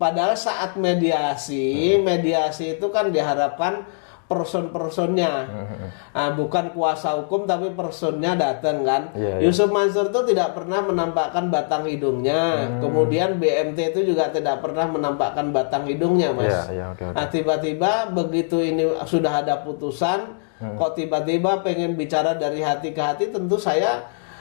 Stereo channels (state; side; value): silent; right; digital silence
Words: saat mediasi itu kan diharapkan person-personnya, bukan kuasa hukum tapi personnya datang kan. Yusuf Mansur itu tidak pernah menampakkan batang hidungnya, kemudian BMT itu juga tidak pernah menampakkan batang hidungnya, Mas. Nah, tiba-tiba begitu ini sudah ada putusan, kok tiba-tiba pengen bicara dari hati ke hati, tentu saya